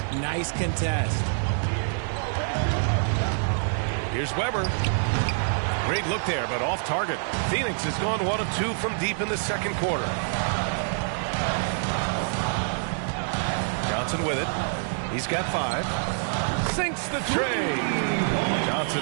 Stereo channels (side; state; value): left; silent; 61 dB below the other